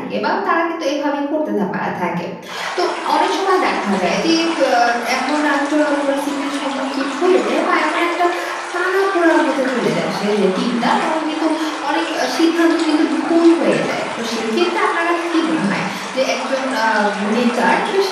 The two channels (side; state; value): both; identical; correlation 1.00